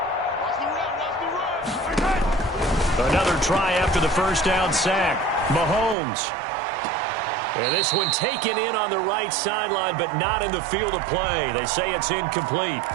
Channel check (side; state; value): left; drops out; at 6.0 s